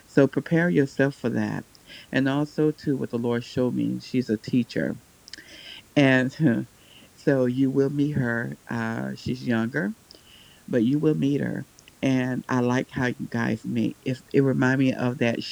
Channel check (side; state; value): both; identical; correlation 1.00